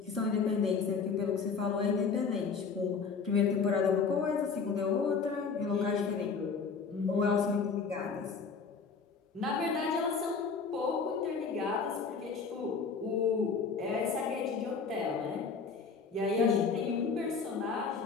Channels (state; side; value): quieter; right; 5.3 dB